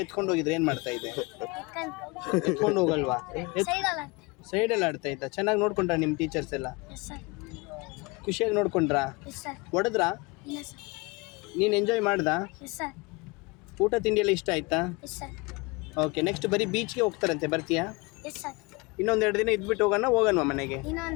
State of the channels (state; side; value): quieter; right; 26.1 dB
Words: ಎತ್ಕೊಂಡು ಹೋಗಿದ್ರೆ ಏನು ಮಾಡ್ತಾ ಇದ್ದೆ? ಎತ್ಕೊಂಡು ಹೋಗಲ್ವಾ? ಸೈಡಲ್ಲ. ಸೈಡಲ್ಲಿ ಆಡ್ತಾ ಇದ್ದ. ಚೆನ್ನಾಗಿ ನೋಡ್ಕೊಂಡ್ರಾ ನಿಮ್ಮ ಟೀಚರ್ಸ್ ಎಲ್ಲ? Yes sir. ಖುಷಿಯಾಗಿ ನೋಡ್ಕೊಂಡ್ರಾ? Yes sir. ಹೊಡೆದ್ರಾ? ಇಲ್ಲ ಸರ್. ನೀನು ಎಂಜಾಯ್ ಮಾಡ್ದಾ? Yes sir. ಊಟ ತಿಂಡಿ ಎಲ್ಲ ಇಷ್ಟ ಆಯ್ತಾ? Yes sir. ಓಕೆ, ನೆಕ್ಸ್ಟ್ ಬರೀ ಬೀಚ್ಗೆ ಹೋಗ್ತಾರಂತೆ, ಬರ್ತೀಯಾ? Yes sir. ಇನ್ನೊಂದು 2 ದಿನ ಇದ್ಬಿಟ್ಟು ಹೋಗೋಣವಾ ಮನೆಗೆ?